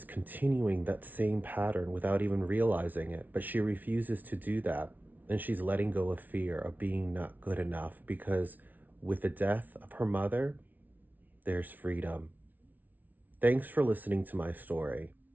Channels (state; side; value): late; left; 0.081 ms